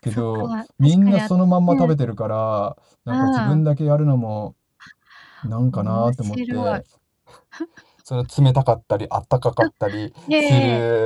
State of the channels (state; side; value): identical; both; correlation 1.00